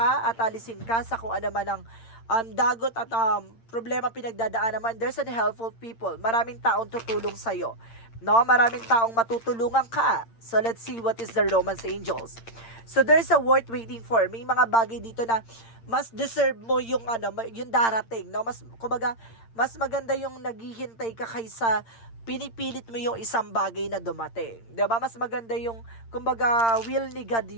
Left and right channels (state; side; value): late; right; 8.8 ms